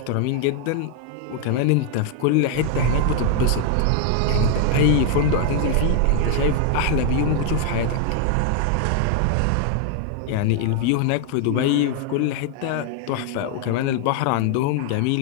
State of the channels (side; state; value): both; different; correlation 0.00